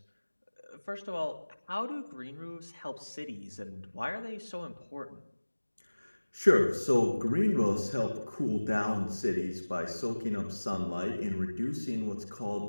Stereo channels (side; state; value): both; inverted; correlation -1.00